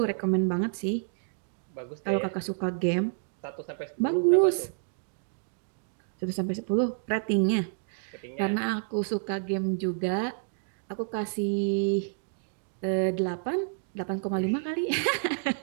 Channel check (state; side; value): silent; left; digital silence